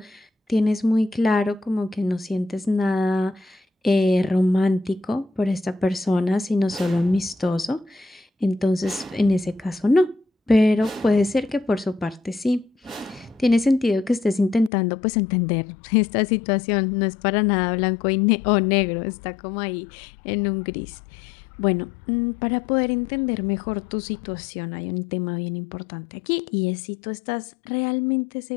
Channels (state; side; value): drops out; right; at 14.7 s